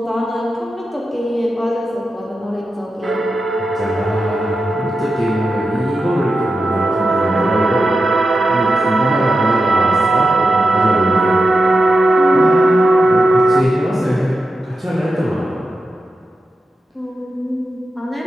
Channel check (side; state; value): both; normal; correlation 0.90